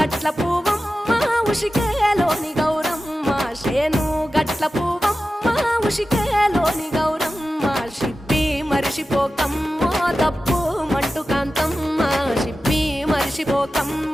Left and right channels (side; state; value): both; normal; correlation 0.94